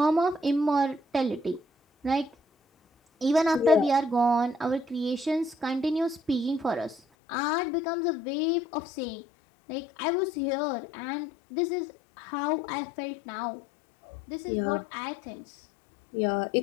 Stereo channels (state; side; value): drops out; right; at 7.0 s